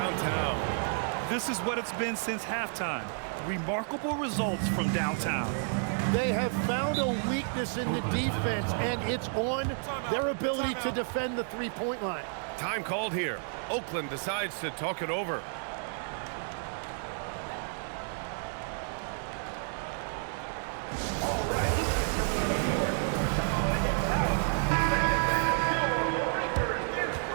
This is what it's been since halftime. Remarkable results from downtown. They have found a weakness in the defense, and it's on their ability to defend the three-point line. Time called here. Oakland decides to talk it over.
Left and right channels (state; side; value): silent; left; 57 dB below the other